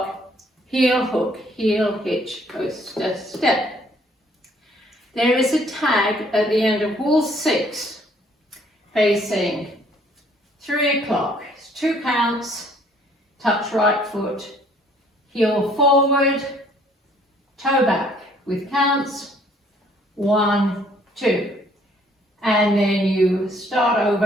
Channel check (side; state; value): both; normal; correlation 0.62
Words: heel, hook, heel, hitch, coaster, step. There is a tag at the end of wall 6 facing 3 o'clock. It's 2 counts, touch right foot, heel forward, toe back with counts, 1, 2. And then you start